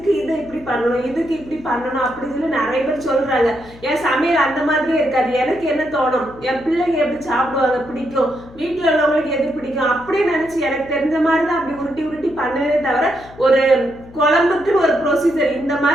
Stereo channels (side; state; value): left; noise; hum, 21 dB below the sound